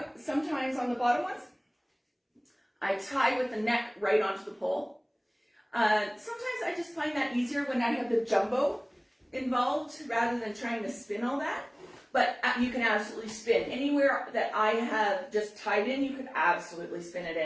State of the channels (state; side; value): identical; both; correlation 1.00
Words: sometimes on the bottom ones, I tie with the neck right onto the pole. Sometimes I just find that easier when I have the jumbo involved rather than trying to spin all that. But you can absolutely spin. Anywhere that I have just tied in, you can absolutely spin it